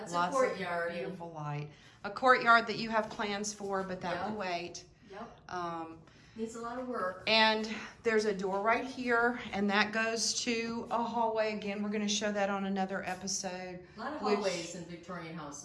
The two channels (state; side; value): identical; both; correlation 1.00